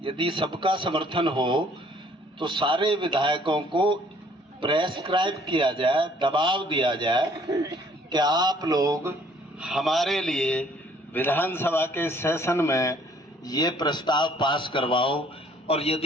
यदि सबका समर्थन हो तो सारे विधायकों को प्रेस्क्राइब किया जाए, दबाव दिया जाए कि आप लोग हमारे लिए विधानसभा के सेशन में ये प्रस्ताव पास करवाओ, और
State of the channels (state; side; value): normal; both; correlation 0.60